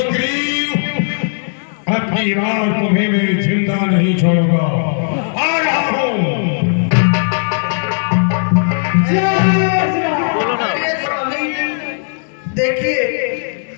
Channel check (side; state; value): right; silent; digital silence